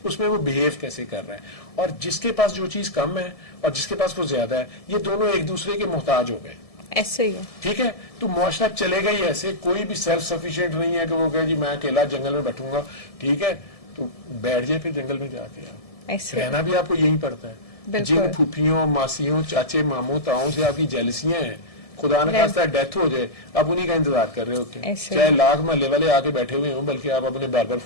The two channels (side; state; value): right; late; 1.7 ms